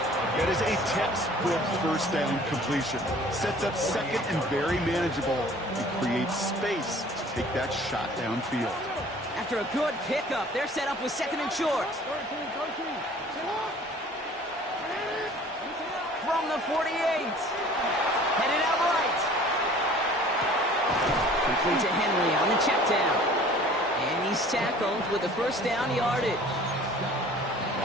That is a textbook 1st down completion. Sets up 2nd and very manageable and creates space to take that shot downfield. After a good pickup, they're set up with 2nd and short. From the 48. Headed out right. Complete to Henry on the check down. And he's tackled with the 1st down yardage.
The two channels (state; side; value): normal; both; correlation 0.49